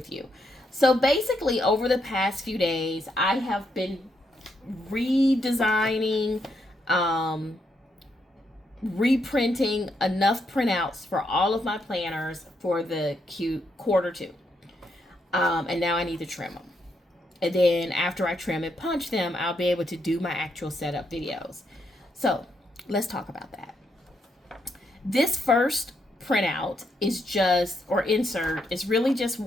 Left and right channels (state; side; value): normal; both; correlation 0.78